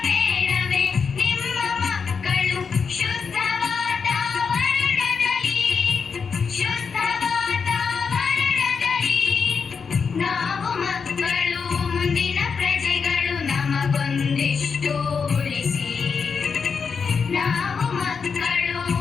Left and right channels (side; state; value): right; quieter; 5.7 dB